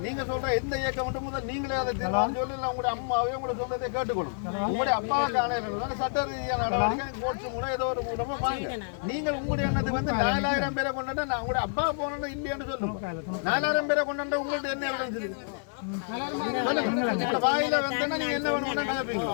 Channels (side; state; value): right; silent; 56 dB below the other